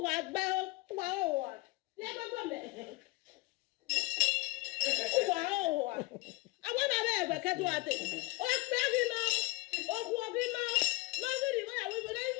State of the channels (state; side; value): quieter; right; 23.2 dB